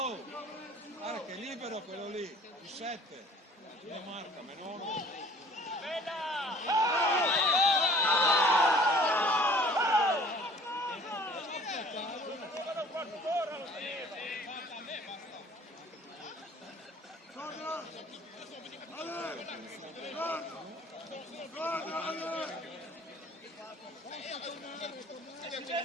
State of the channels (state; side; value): normal; both; correlation 0.50